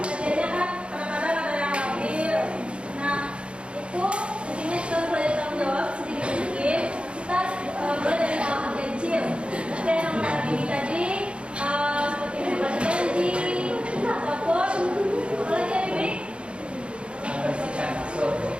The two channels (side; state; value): left; late; 0.057 ms